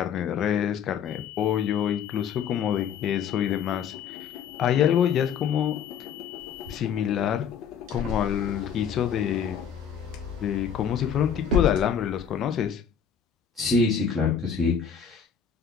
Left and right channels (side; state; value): right; quieter; 7.6 dB